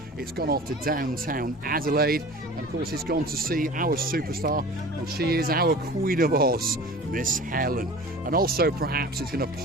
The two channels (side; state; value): both; normal; correlation 0.40